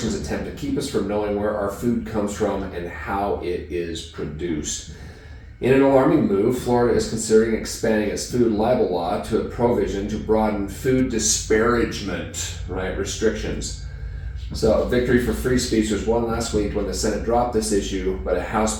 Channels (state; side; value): identical; both; correlation 1.00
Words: attempt to keep us from knowing where our food comes from and how it is produced. In an alarming move, Florida is considering expanding its food libel law to a provision to broaden food disparagement, restrictions. So a victory for free speech was won last week when the Senate dropped this issue, but a House